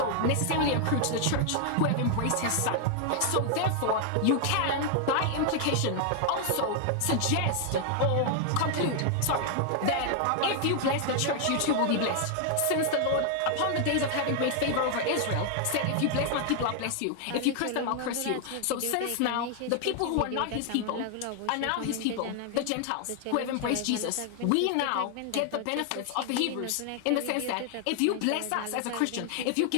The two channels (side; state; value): both; different; correlation 0.00